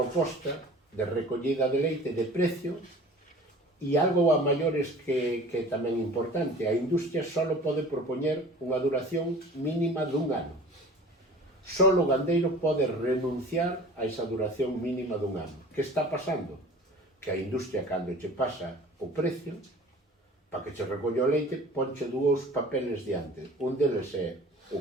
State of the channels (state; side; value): normal; both; correlation 0.44